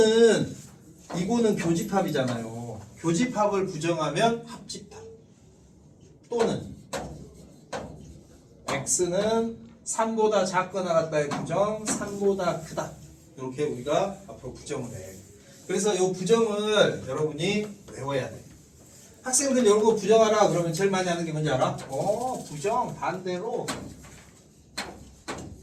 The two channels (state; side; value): identical; both; correlation 1.00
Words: 교집합이잖아요. 교집합을 부정하면 합집합. 또는 x는 3보다 작거나 같다의 부정, 3보다 크다. 이렇게 우리가 앞으로 부정을 해. 그래서 이 부정을 여러분이 외워야 돼. 학생들 이런 거 부정하라 그러면 제일 많이 하는 게 뭔지 알아? 부정 반대로